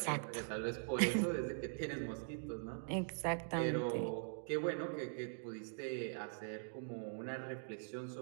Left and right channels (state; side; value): silent; left; digital silence